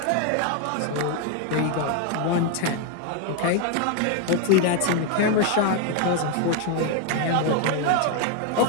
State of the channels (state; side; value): different; both; correlation 0.01